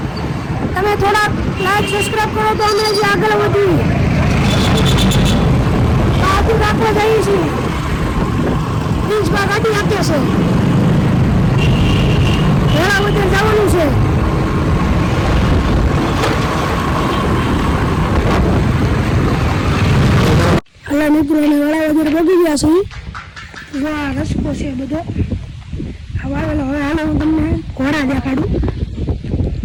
તમે થોડા લાઈક સબસ્ક્રાઈબ કરો તો અમે જે આગળ વધીએ. બહાદુર રાખવા જઈએ છીએ. પ્રિન્સમાં ગાડી આપે છે. વેળાવદર જવાનું છે. એટલે મિત્રો અમે વેળાવદર પહોંચી ગયા છીએ. જો આ રસ્તો છે બધો વાવેલો. હવે હાલો હું તમને ઘોડા દેખાડું.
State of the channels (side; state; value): both; identical; correlation 1.00